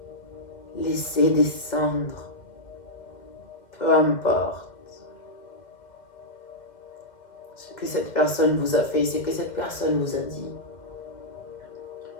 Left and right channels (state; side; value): late; right; 2.1 ms